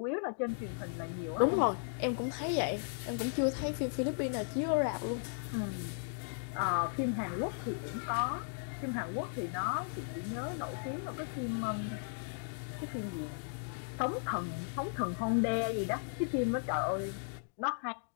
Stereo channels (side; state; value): right; silent; digital silence